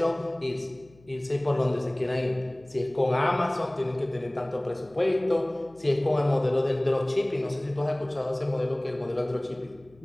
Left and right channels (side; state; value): left; noise; hum, 27 dB below the sound